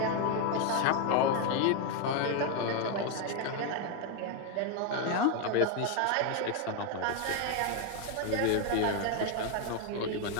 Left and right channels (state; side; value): different; both; correlation 0.01